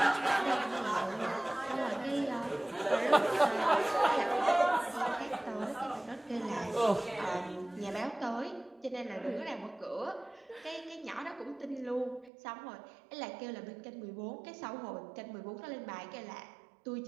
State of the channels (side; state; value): left; drops out; at 12.3 s